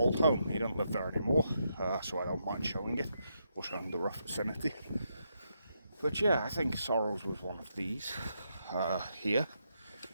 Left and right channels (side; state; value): both; inverted; correlation -0.80